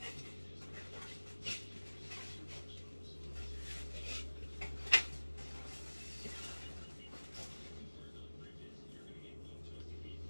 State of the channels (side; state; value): both; inverted; correlation -1.00